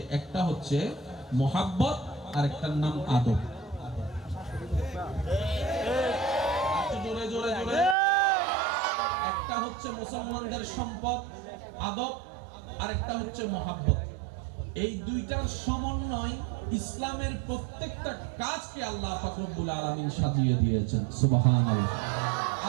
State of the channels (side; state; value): left; drops out; at 8.0 s